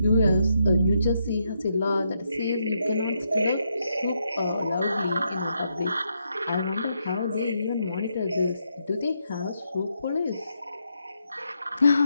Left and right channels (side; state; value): both; inverted; correlation -0.80